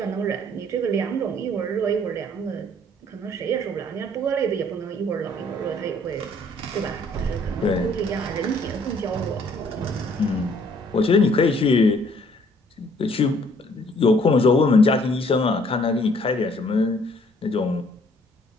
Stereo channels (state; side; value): normal; both; correlation 0.61